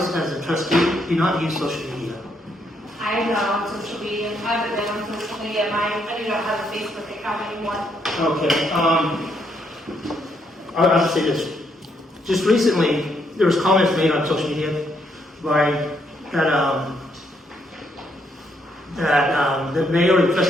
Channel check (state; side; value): normal; both; correlation 0.74